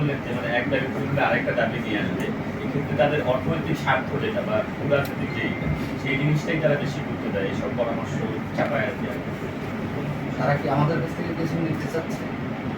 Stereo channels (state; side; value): identical; both; correlation 1.00